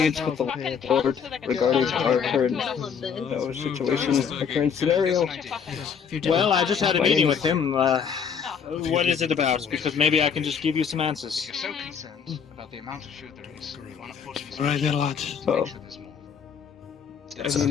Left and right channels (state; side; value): quieter; right; 6.9 dB